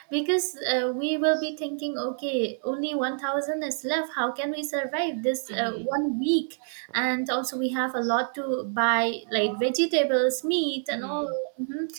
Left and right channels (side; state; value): left; silent; 60 dB below the other